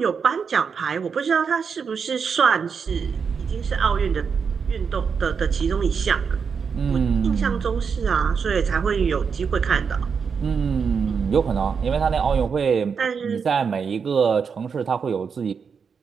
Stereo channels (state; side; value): quieter; left; 6.1 dB